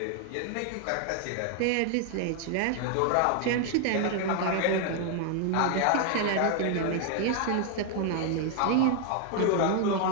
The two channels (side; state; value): both; different; correlation 0.00